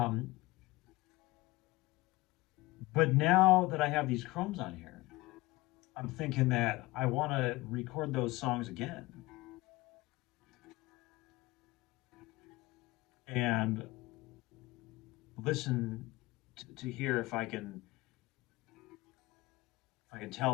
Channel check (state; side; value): quieter; right; 20.5 dB